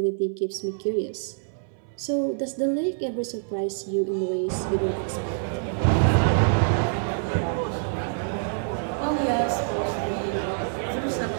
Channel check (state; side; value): silent; left; 61 dB below the other